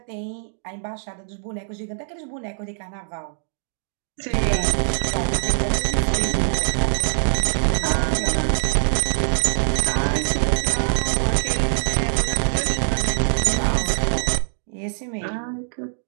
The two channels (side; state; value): left; silent; digital silence